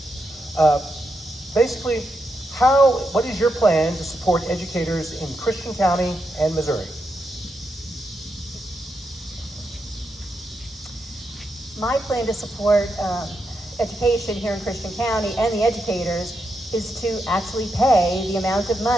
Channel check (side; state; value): both; normal; correlation 0.84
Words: Basically, what is your plan to support educators in Christian County and Missouri? My plan to support education here in Christian County and the educators is to actually pay the amount of